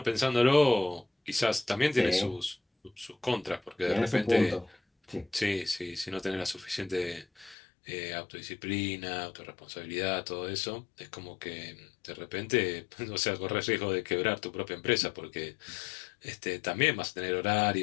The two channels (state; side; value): drops out; right; at 7.6 s